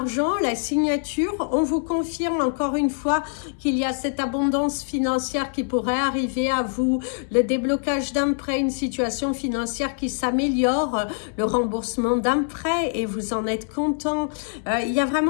la signature. On vous confirme encore une fois qu'il y a cette abondance financière qui pourrait arriver à vous, le déblocage d'un prêt, une situation financière qui s'améliore, le remboursement d'un prêt et vous en êtes content. Il y a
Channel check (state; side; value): silent; right; 60 dB below the other